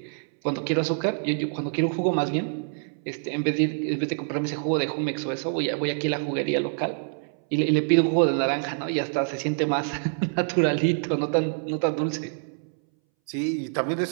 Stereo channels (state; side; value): silent; left; 61 dB below the other